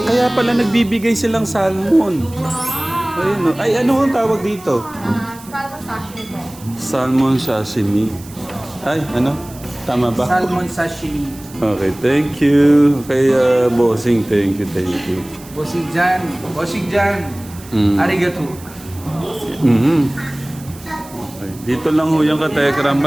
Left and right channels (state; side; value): noise; right; hiss, 20 dB below the sound